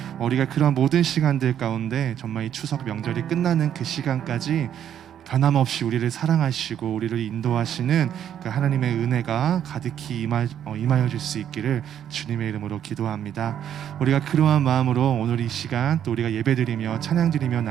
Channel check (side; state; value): left; quieter; 9.8 dB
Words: 우리가 그런 모든 시간들 가운데 정말 이 추석 명절이 끝나는 그 시간까지 변함없이 우리를 사랑하시고 우리를 인도하시는 그 하나님의 은혜가 가득히 임하여 줄 수 있기를 주님의 이름으로 기도합니다. 우리가 그러한 마음으로 오늘 이 시간 또 우리가 예배드리며 찬양드리며